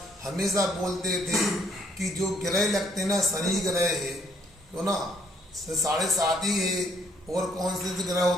हमेशा बोलते थे कि जो ग्रह लगते ना, शनि ग्रह है तो ना 7.5 ही है, और कौन से ग्रह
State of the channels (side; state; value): both; normal; correlation 0.67